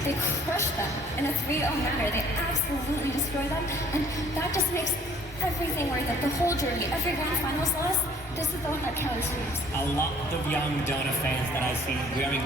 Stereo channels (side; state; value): both; normal; correlation 0.56